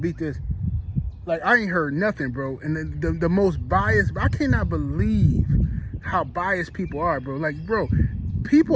beat this. Like, I ain't heard nothing, bro. And the most biased, I cannot believe how biased people are, bro. Like, bro,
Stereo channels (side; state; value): both; identical; correlation 1.00